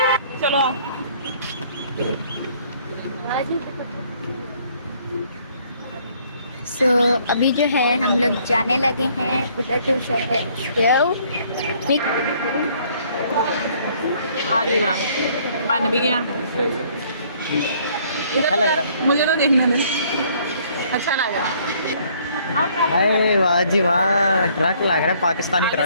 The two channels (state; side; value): inverted; both; correlation -0.62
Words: चलो आओ। अभी जो है हम लोग जाने लगे हैं उधर जो शहर आ जी वाह, बन भी गया। अच्छा लग रहा। मुझे तो देखने दे। अच्छा लग रहा। अरे वाह जी वाह, ट्रक लग रहा है, पाकिस्तानी